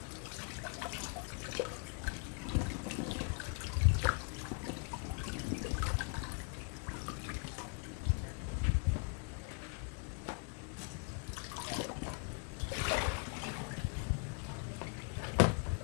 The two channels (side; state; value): right; quieter; 36.8 dB